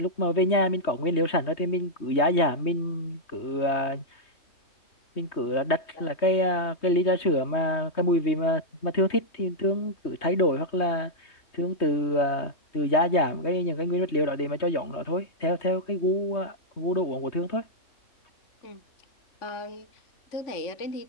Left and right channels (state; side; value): late; right; 3.2 ms